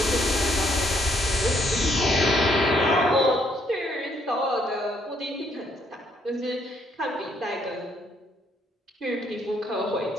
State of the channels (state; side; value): normal; both; correlation 0.69